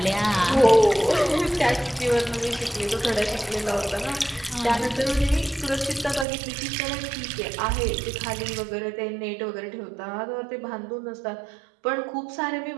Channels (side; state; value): left; drops out; at 6.2 s